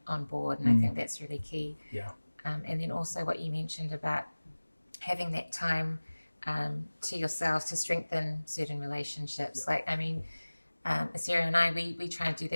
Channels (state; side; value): inverted; both; correlation -1.00